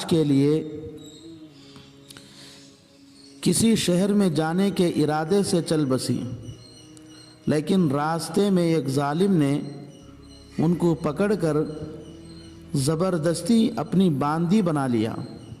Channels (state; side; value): identical; both; correlation 1.00